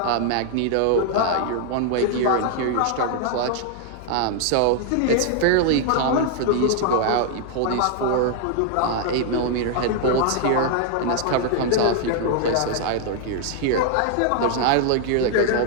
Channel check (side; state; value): both; different; correlation 0.00